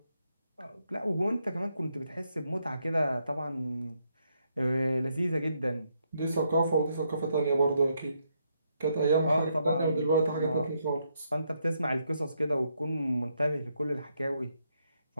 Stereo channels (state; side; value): inverted; both; correlation -0.77